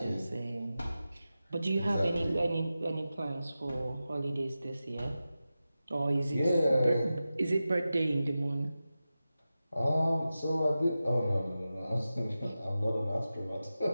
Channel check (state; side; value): inverted; both; correlation -0.93